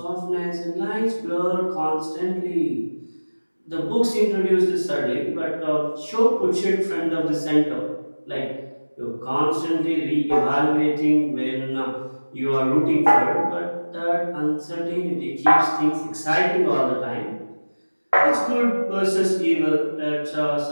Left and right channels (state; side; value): inverted; both; correlation -1.00